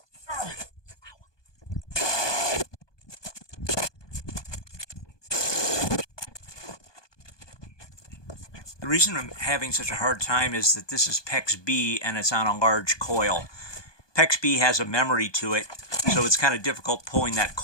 The reason I'm having such a hard time is that this is PEX B and it's on a large coil. PEX B has a memory to it, so it's kind of difficult pulling that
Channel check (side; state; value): right; late; 1.2 ms